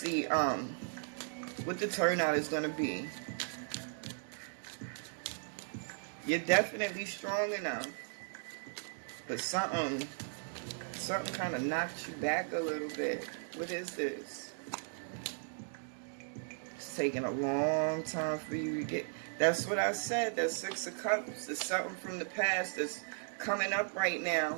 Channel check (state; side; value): silent; left; digital silence